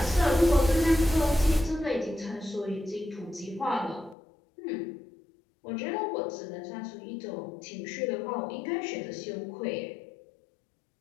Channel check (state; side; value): drops out; right; at 4.2 s